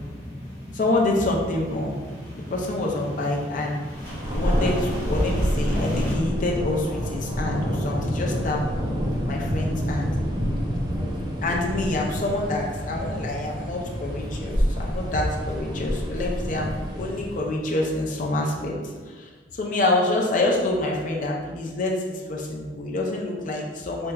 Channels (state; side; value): normal; both; correlation 0.58